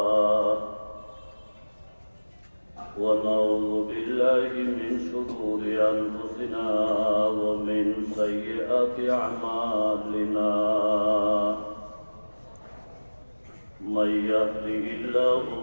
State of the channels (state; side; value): inverted; both; correlation -1.00